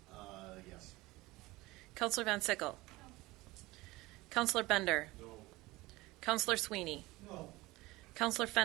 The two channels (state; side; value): quieter; left; 20.4 dB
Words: Yes. Councillor Van Sickle. No. Councillor Bender. No. Councillor Sweeney. No. Councillor